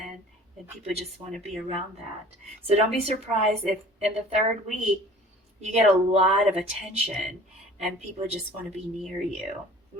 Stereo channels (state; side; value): normal; both; correlation 0.47